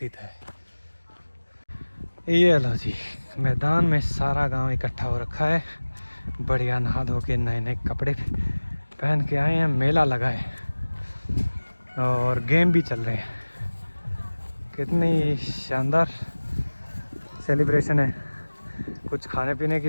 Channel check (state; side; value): inverted; both; correlation -1.00